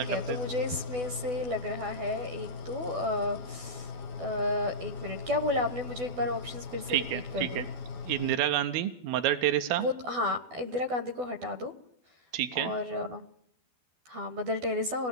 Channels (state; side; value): late; left; 12 ms